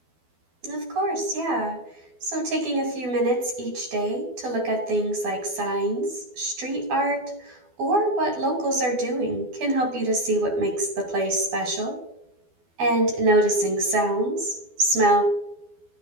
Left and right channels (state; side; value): late; left; 12 ms